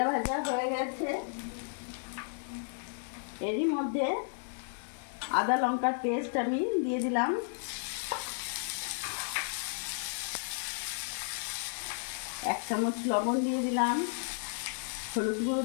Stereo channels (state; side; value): silent; right; digital silence